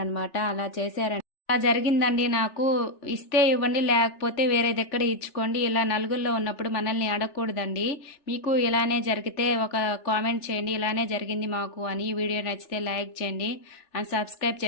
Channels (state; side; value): late; right; 3.4 ms